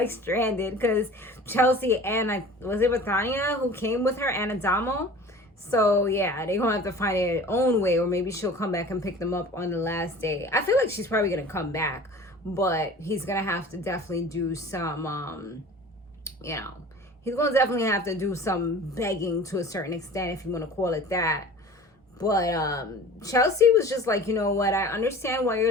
stranded because Chelsea and was it Bethania who came with her and Adamo? So yeah, they're gonna have to find their own way, or maybe she'll come back and pick them up on the last day. I feel like she's probably gonna come back, but he's gonna have to definitely do some you know, he's gonna definitely have to do some begging to a certain extent, if you want to call it that. But Chelsea was just like, you know what, I understand why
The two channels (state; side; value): normal; both; correlation 0.42